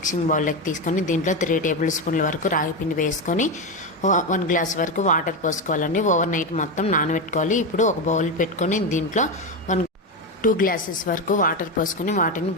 బౌల్లోకి తీసుకొని దీంట్లో 3 టేబుల్ స్పూన్ల వరకు రాగి పిండి వేసుకొని 1 గ్లాస్ వరకు వాటర్ పోసుకోవాలండి. ఓవర్ నైట్ మొత్తం నానబెట్టుకోవాలి. ఇప్పుడు ఒక బౌల్ పెట్టుకొని దీంట్లో 2 గ్లాసెస్ వరకు వాటర్ పోసుకొని వాటిని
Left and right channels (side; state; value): both; normal; correlation 0.13